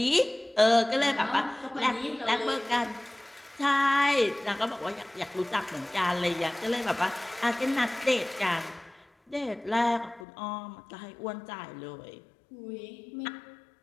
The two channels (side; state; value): right; drops out; at 10.2 s